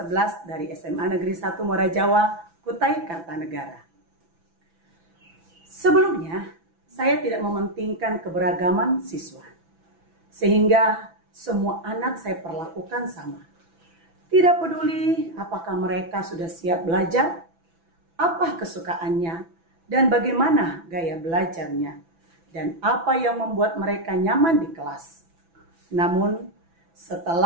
dari SMA Negeri 1 Muara Jawa, Kutai Kartanegara. Sebelumnya, saya tidak mementingkan keberagaman siswa, sehingga semua anak saya perlakukan sama. Tidak peduli apakah mereka sudah siap belajar, apa kesukaannya, dan bagaimana gaya belajarnya, dan apa yang membuat mereka nyaman di kelas. Namun,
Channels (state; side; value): late; left; 6.0 ms